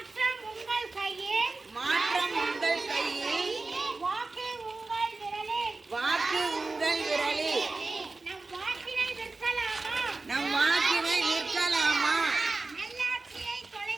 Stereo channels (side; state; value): left; quieter; 3.5 dB